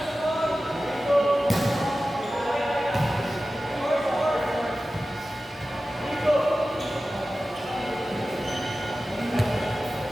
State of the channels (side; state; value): both; normal; correlation 0.95